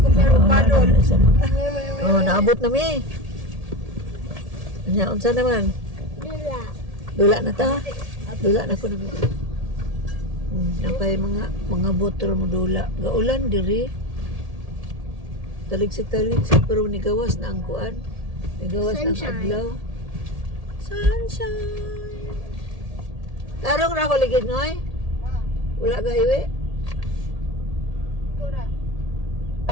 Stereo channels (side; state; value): left; late; 1.7 ms